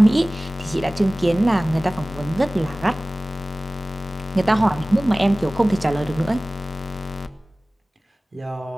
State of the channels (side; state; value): both; normal; correlation 0.98